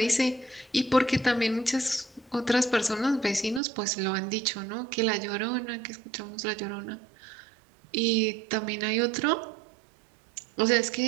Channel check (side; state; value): left; drops out; at 3.6 s